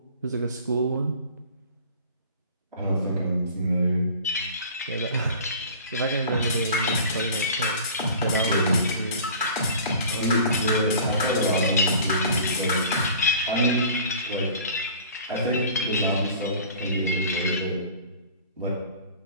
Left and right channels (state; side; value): inverted; both; correlation -0.44